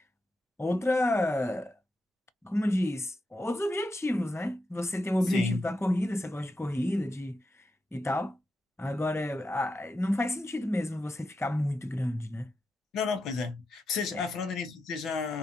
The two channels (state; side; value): normal; both; correlation 0.88